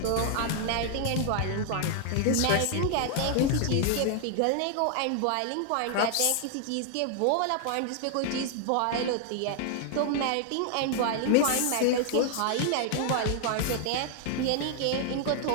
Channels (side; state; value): both; different; correlation 0.00